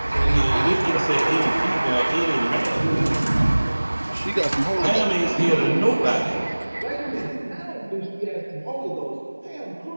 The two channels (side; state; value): both; inverted; correlation -1.00